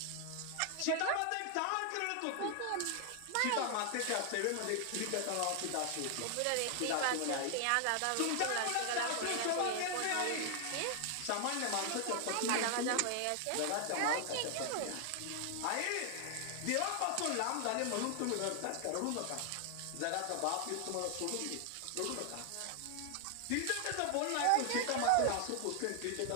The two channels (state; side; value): different; both; correlation 0.00